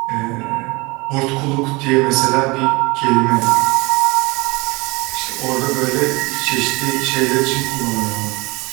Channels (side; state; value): left; quieter; 24.9 dB